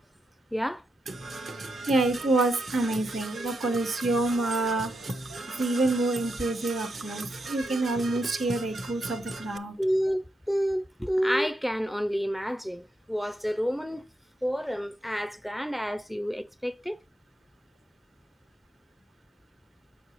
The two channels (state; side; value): normal; both; correlation 0.83